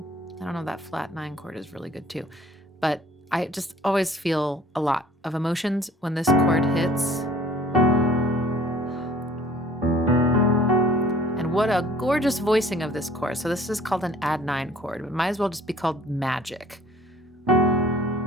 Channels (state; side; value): normal; both; correlation 0.52